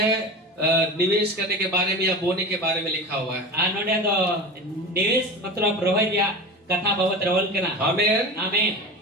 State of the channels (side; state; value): both; normal; correlation 0.30